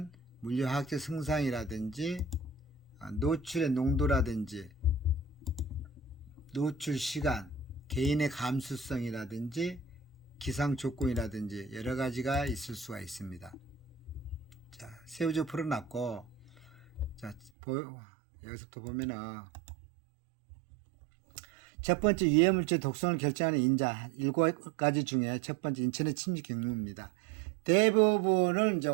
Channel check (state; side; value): drops out; left; at 17.5 s